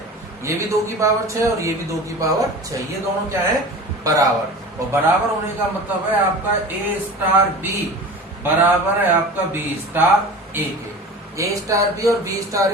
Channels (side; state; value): both; normal; correlation 0.36